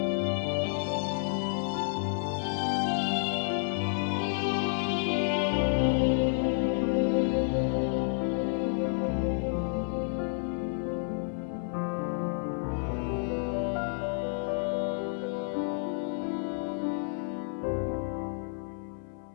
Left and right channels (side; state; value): right; silent; 58 dB below the other